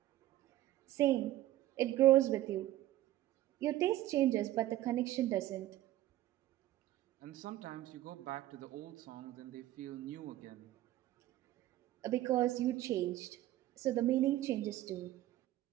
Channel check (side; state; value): left; quieter; 14.7 dB